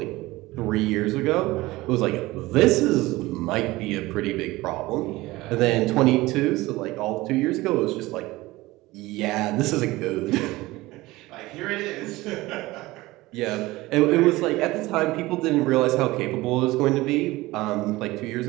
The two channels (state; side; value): quieter; left; 19.5 dB